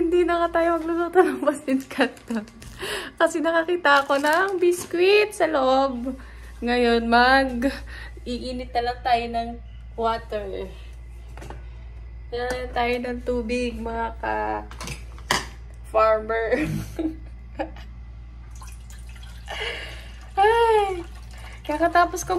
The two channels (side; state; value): both; identical; correlation 1.00